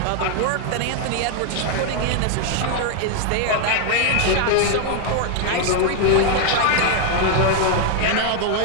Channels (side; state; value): both; different; correlation 0.00